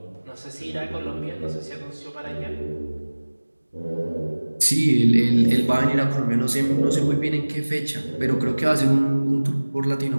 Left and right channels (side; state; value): both; inverted; correlation -1.00